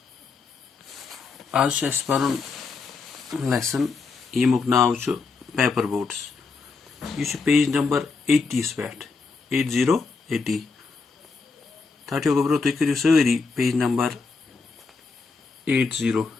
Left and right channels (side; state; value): right; quieter; 4.5 dB